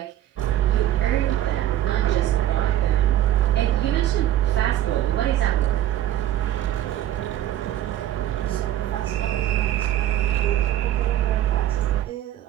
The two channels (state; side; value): quieter; left; 12.5 dB